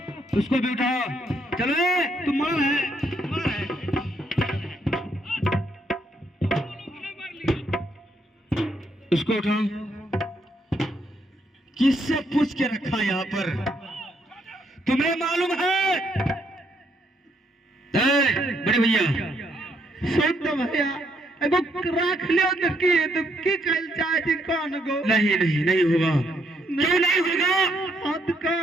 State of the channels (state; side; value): normal; both; correlation 0.73